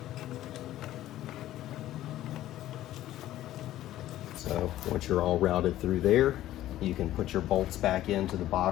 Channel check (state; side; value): quieter; right; 13.9 dB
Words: So once you're all routed through there, you can put your bolts back into the